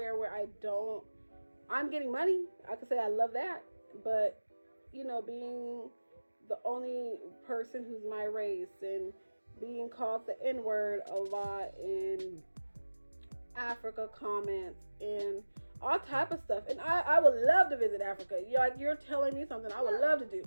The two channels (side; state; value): both; inverted; correlation -1.00